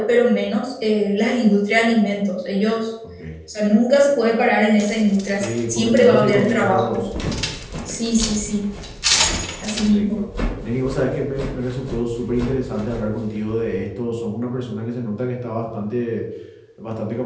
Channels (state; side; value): identical; both; correlation 1.00